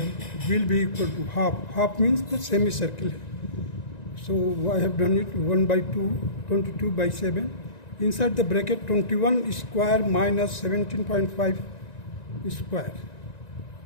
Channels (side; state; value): right; late; 1.9 ms